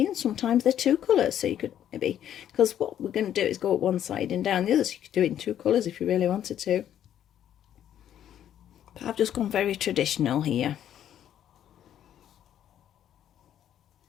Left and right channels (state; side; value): quieter; right; 10.5 dB